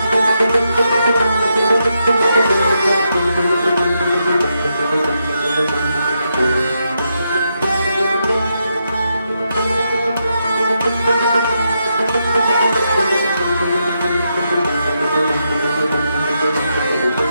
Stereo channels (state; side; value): inverted; both; correlation -0.82